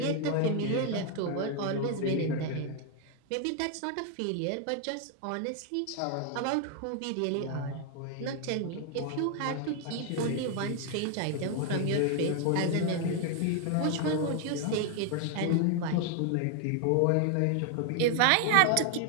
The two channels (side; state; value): both; different; correlation 0.00